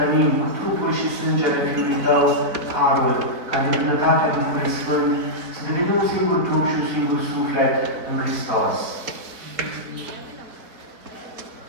cu trupul și sângele Fiului Tău, harul, ca de bunătatea Duhului Sfânt, să devenim un singur trup și un singur suflet în Hristos.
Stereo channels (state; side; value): late; left; 4.1 ms